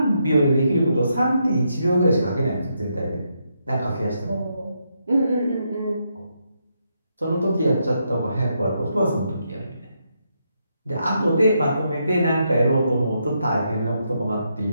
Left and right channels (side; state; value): both; inverted; correlation -0.80